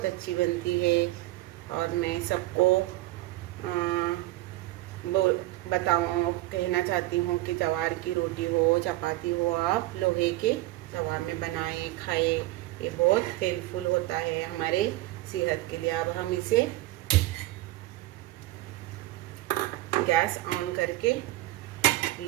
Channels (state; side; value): quieter; left; 17.7 dB